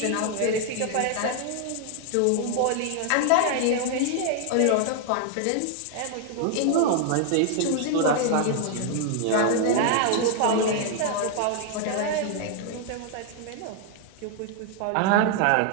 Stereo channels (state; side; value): different; both; correlation 0.00